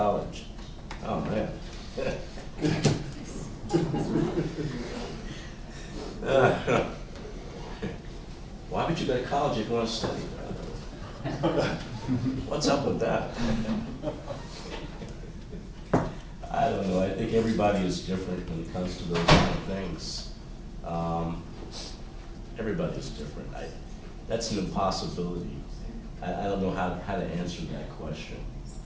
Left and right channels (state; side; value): identical; both; correlation 1.00